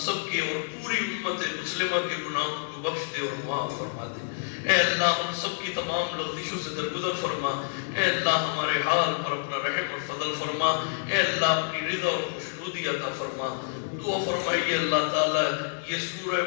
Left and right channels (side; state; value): right; silent; digital silence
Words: کے اور پوری امت مسلمہ کے گناہوں کو بخش دے اور معاف فرما دے۔ اے اللہ ہم سب کی تمام لغزشوں سے درگزر فرما۔ اے اللہ ہمارے حال پر اپنا رحم اور فضل فرما۔ اے اللہ اپنی رضا اور خوشنودی عطا فرما۔ دعا فرمائیے اللہ تعالیٰ یہ سورہ